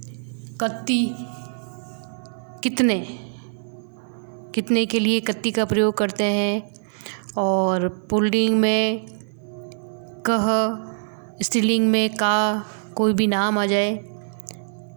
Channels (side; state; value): left; silent; 63 dB below the other